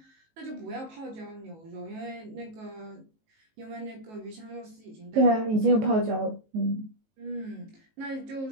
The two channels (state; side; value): late; left; 19 ms